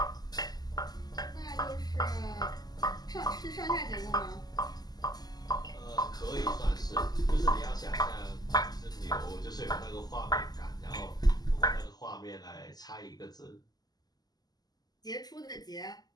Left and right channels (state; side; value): late; right; 0.19 ms